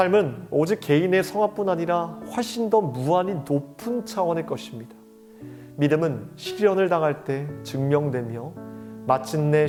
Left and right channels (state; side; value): identical; both; correlation 1.00